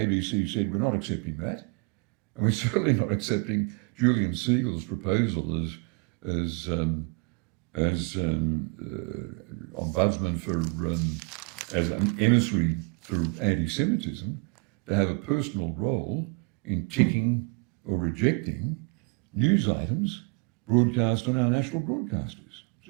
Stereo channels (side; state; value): left; quieter; 34.2 dB